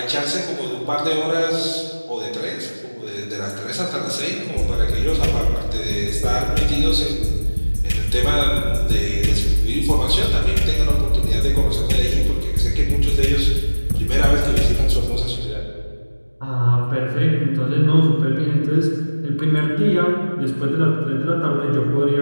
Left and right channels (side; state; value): both; inverted; correlation -1.00